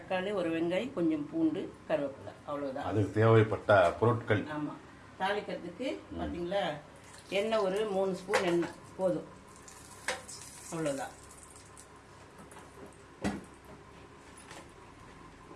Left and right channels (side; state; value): both; identical; correlation 1.00